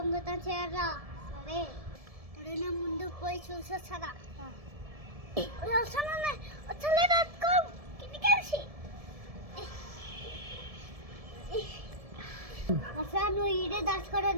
చేయరా? సరే, ఎవరైనా ముందు పోయి చూసొస్తారా? అసలు నువ్వు ఈడే దాచుకోవడం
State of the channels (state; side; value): late; left; 1.7 ms